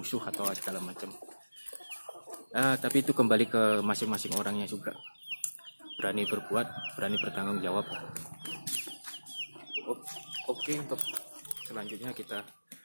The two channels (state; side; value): inverted; both; correlation -1.00